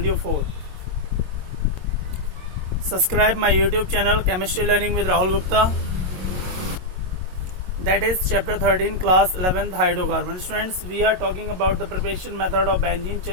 4. Subscribe my YouTube channel Chemistry Learning with Rahul Gupta. That is chapter 13 class 11th hydrocarbons. Friends, we are talking about the preparation method of benzene.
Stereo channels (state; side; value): late; left; 22 ms